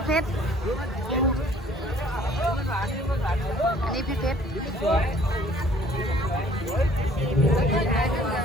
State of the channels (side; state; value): both; normal; correlation 0.56